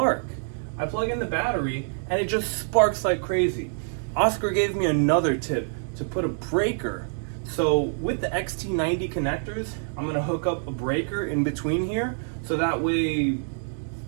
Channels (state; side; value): silent; left; digital silence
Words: I plug in the battery and it just sparks like crazy. Oscar gave me another tip to put a breaker. So with the XT90 connectors, I'm gonna hook up a breaker in between here so that way